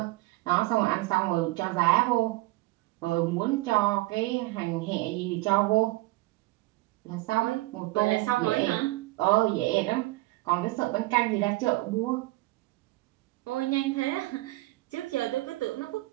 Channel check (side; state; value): left; quieter; 20.6 dB